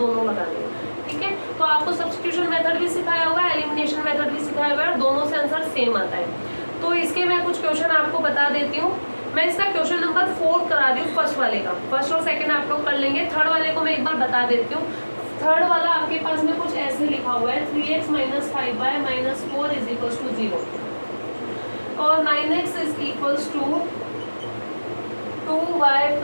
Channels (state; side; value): inverted; both; correlation -1.00